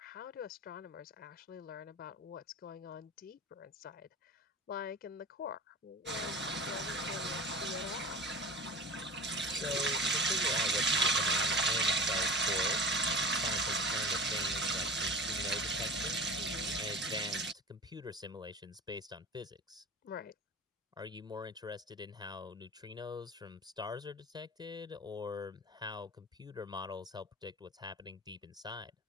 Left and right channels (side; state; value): both; normal; correlation 0.34